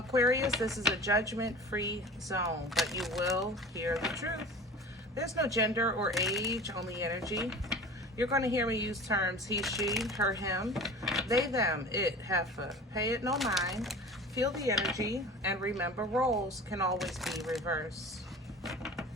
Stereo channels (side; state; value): both; normal; correlation 0.38